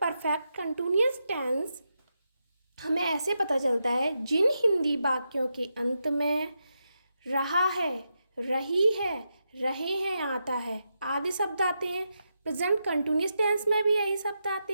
परफेक्ट कंटिन्यूअस टेंस हमें ऐसे पता चलता है जिन हिंदी वाक्यों के अंत में रहा है, रही है, रहे हैं आता है आदि शब्द आते हैं। प्रेजेंट कंटिन्यूअस टेंस में भी यही शब्द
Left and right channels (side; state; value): both; inverted; correlation -0.85